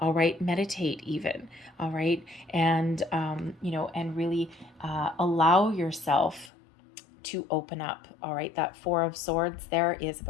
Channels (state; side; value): drops out; right; at 6.5 s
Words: right. Meditate even. All right. And, you know, and really allow yourself to open up. All right, that Four of Swords there is